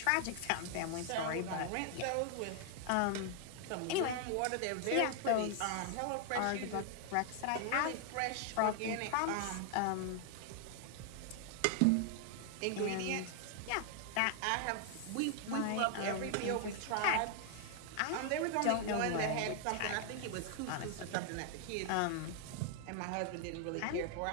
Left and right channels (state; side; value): different; both; correlation 0.00